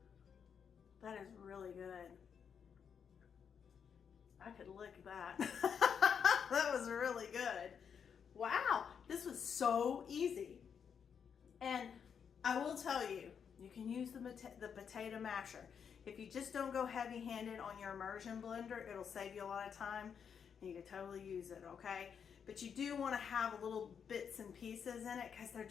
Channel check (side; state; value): right; quieter; 7.2 dB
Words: That is really good. I could lick that. That was really good. Wow, this was so easy. And I will tell you, you can use the potato masher. If you just don't go heavy-handed on your immersion blender, it'll save you a lot of time, and you can totally use it, okay? But you do want to have little bits and pieces in it because they're